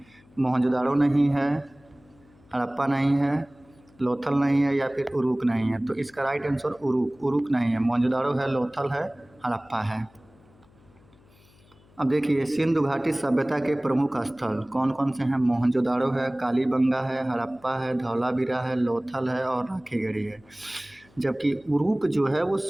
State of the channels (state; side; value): noise; left; hum, 29 dB below the sound